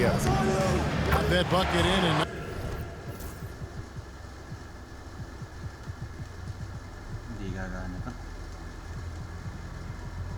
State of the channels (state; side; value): identical; both; correlation 1.00